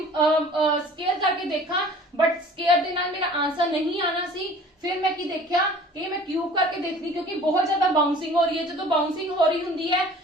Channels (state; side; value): normal; both; correlation 0.47